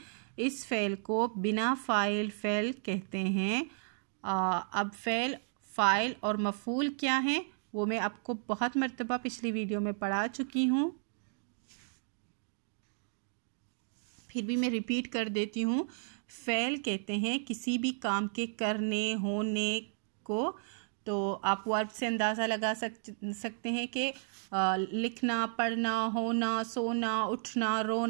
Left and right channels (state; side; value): silent; left; digital silence